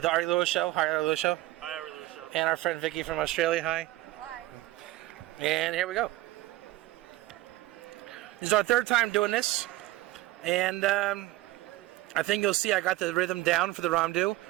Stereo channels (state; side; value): quieter; left; 17.1 dB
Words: the Ari Lewis Show. Hi, Ari Lewis Show. Hi, Ari Lewis Show. And our friend Vicky from Australia. Hi. Hi. And here we go. This is our third time doing this, and I think you'll see I got the rhythm down for the Ramdu.